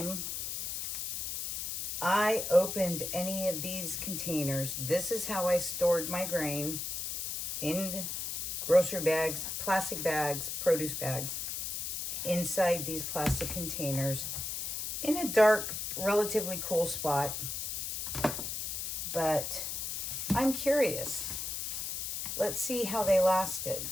I opened any of these containers. This is how I stored my grain in grocery bags, plastic bags, produce bags, inside these plastic containers in a dark, relatively cool spot. But I'm curious. Let's see how they lasted.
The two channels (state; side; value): noise; left; hiss, 3 dB below the sound